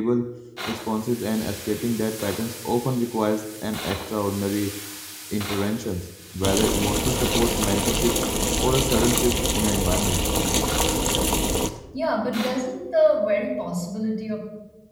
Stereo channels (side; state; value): both; identical; correlation 1.00